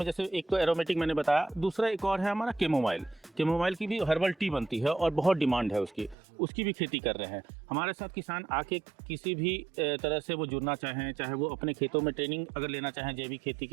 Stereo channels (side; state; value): left; drops out; at 6.2 s